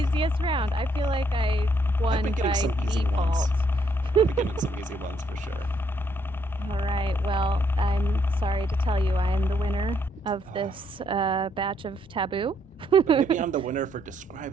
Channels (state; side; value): normal; both; correlation 0.72